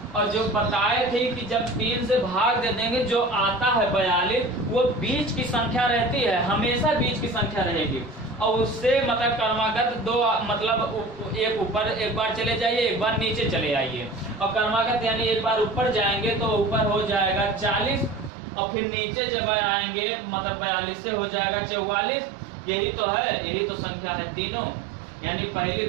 और जो बताए थे कि जब 3 से भाग दे देंगे जो आता है 42 वो बीच की संख्या रहती है, हमेशा बीच की संख्या रहेगी और उससे मतलब क्रमागत 2 मतलब एक ऊपर एक बार चले जाइए, एक बार नीचे चले आइए और क्रमागत यानी एक बार ऊपर जाएंगे तो ऊपर हो जाएगा 40 और फिर नीचे जब आएंगे मतलब 42 से हो जाएगा 44। यही तो है, यही तो संख्या है तीनों यानी पहली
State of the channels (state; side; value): drops out; left; at 18.3 s